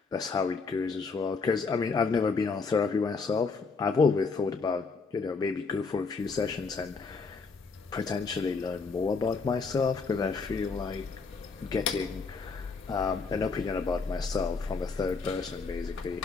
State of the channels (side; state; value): right; quieter; 4.7 dB